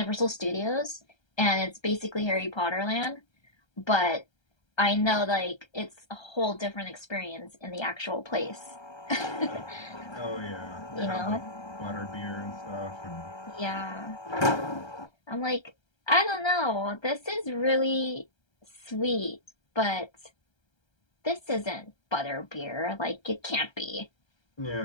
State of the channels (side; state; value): right; late; 1.3 ms